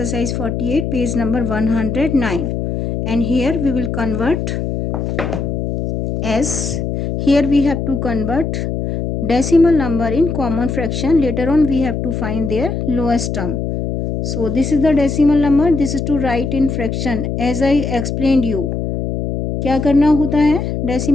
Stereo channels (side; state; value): left; noise; hum, 3 dB below the sound